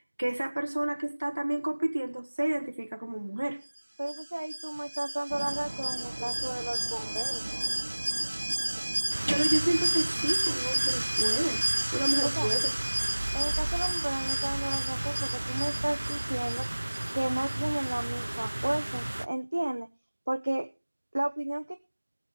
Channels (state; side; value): inverted; both; correlation -1.00